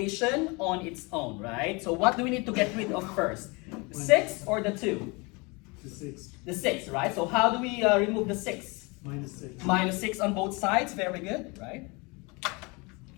on its own, right? So what do we need to get rid of first? The 6 or the 2? The 6. The 6, right? So how do we remove the 6? Minus 6. Minus 6 on both sides, very good, right?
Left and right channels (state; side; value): quieter; right; 27.9 dB